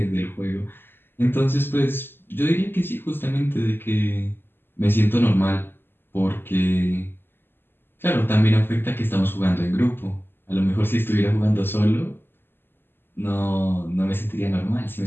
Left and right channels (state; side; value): late; right; 0.10 ms